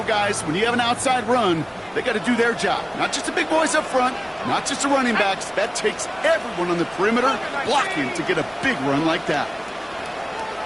guys, when you have an outside run, they got to do their job. Not just the big boys up front, not just the running backs. That takes everyone on the perimeter blocking to get a big run like that.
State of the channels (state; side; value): identical; both; correlation 1.00